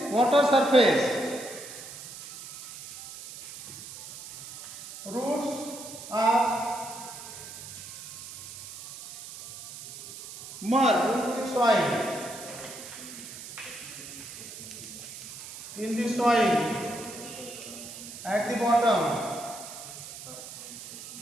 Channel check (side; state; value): right; noise; hiss, 13 dB below the sound